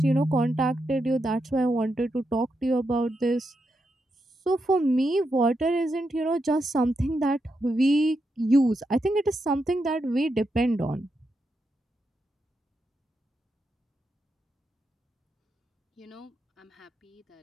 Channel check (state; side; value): normal; both; correlation 0.84